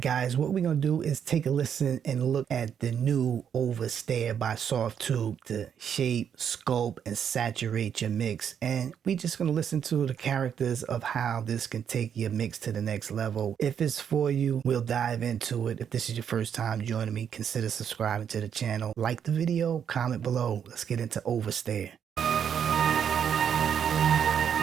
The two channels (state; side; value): quieter; left; 8.2 dB